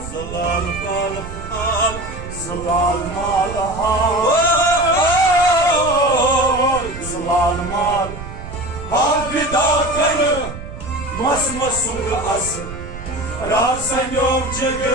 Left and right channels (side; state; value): right; noise; rumble, 11 dB below the sound